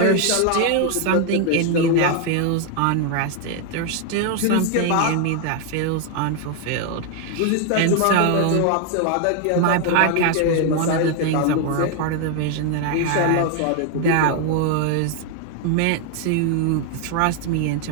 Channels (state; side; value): different; both; correlation 0.01